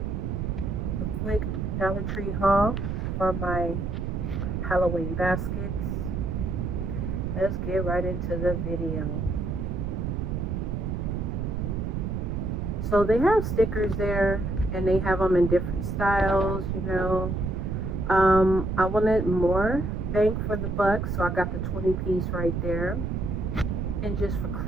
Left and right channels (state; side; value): noise; right; rumble, 1 dB below the sound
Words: a quick Dollar Tree haul for my Halloween baskets. Let's get right into the video. So they have stickers there and they have them in different styles. I wanted more bang for the buck, so I got the 20 piece right there. And just for